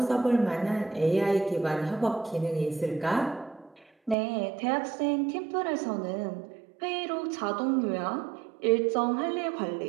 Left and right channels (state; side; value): drops out; left; at 4.2 s